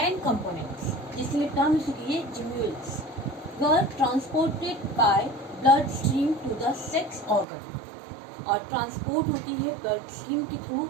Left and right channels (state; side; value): drops out; left; at 7.5 s